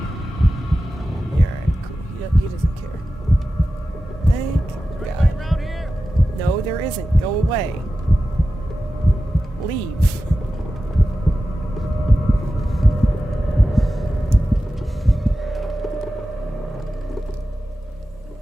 Yeah, alright, cool. He doesn't care. Thank God. No, there isn't. Go away. Leave.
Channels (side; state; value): both; normal; correlation 0.93